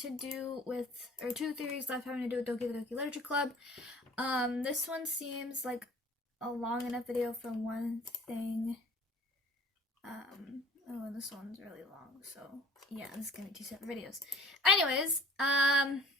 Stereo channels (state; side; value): normal; both; correlation 0.49